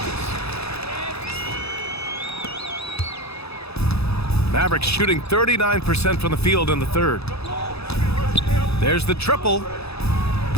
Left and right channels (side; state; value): right; late; 0.79 ms